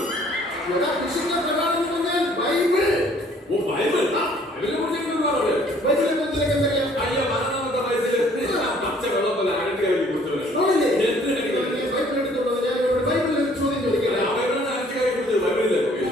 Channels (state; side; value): normal; both; correlation 0.59